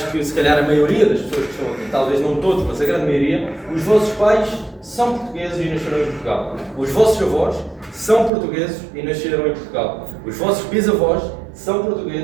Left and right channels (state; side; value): drops out; left; at 8.3 s